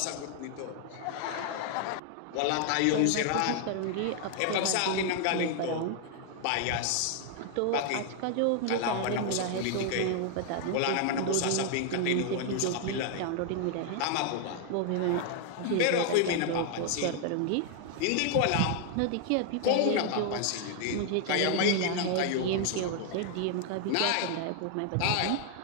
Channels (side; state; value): both; different; correlation 0.00